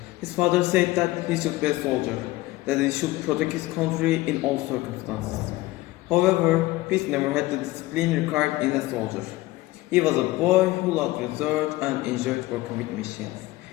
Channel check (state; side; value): quieter; right; 18.7 dB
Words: His father said that he should be a soldier, that he should protect his country in all circumstances. However, Peace never had the discipline required in a soldier. He was a boy who loved research and enjoyed working with machines.